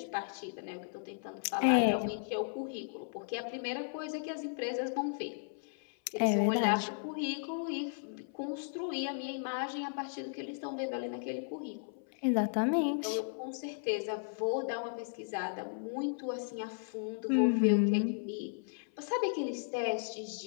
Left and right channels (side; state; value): right; silent; 54 dB below the other